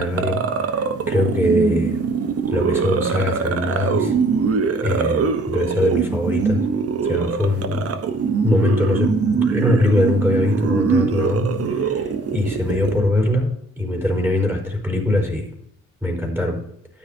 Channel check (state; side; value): normal; both; correlation 0.58